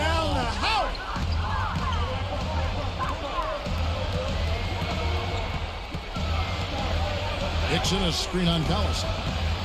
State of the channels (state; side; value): identical; both; correlation 1.00